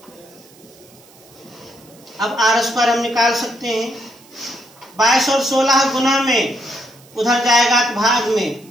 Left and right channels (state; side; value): noise; right; hiss, 26 dB below the sound